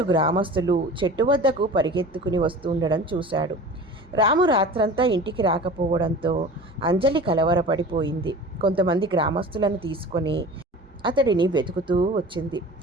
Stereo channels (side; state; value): both; normal; correlation 0.38